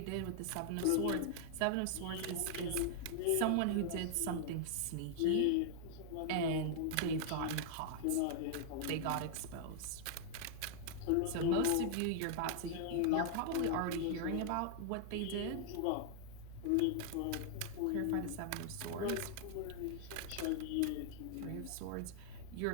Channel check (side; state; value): both; different; correlation 0.00